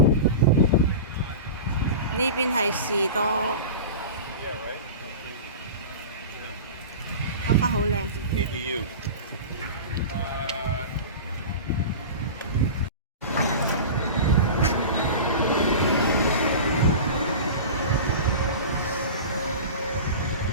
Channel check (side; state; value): both; inverted; correlation -0.31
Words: 呢邊係士多，花花好靚。